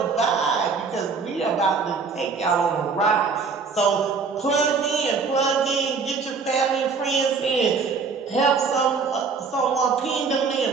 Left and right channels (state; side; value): quieter; left; 5.1 dB